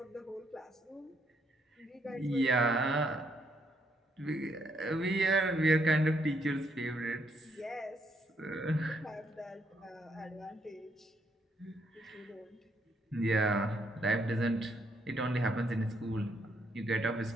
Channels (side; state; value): both; normal; correlation 0.73